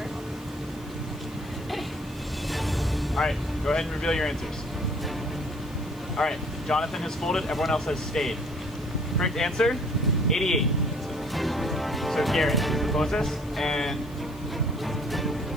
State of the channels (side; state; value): left; noise; hiss, 25 dB below the sound